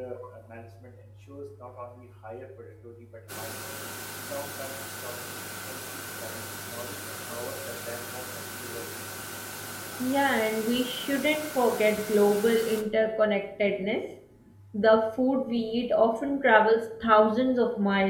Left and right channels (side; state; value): both; identical; correlation 1.00